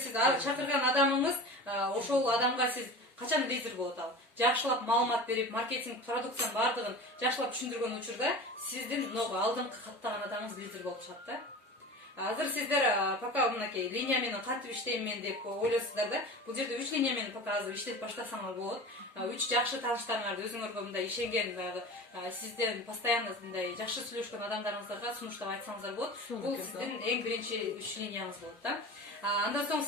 сиз чакырган адамыңыз, ошол адамга сиз качан лидер болот ал. Жакшылап маалымат берип, маркетинг продукциянын бардыгын жакшылап түшүндүргөн учурда сиздин алдыңкы каттаган адамыңыз лидер болуп чыгат да. Азыр сиздер пока мынакей линия менен кантип иштейм мен деп ойлойсуздар да. Бул жерде 3 линия менен пока азыр иштеп баштасаңар болот. 3 жакшы тааныштарыңарды өзүңөргө мындай ишенген сизден постоянно мындай жакшы сүйлөшкөн адамдарыңыздарга сунуштап айтсаңыздар болот. Бул сиздин эң биринчи 3 линияңыз болот да. Андан соң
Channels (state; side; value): normal; both; correlation 0.34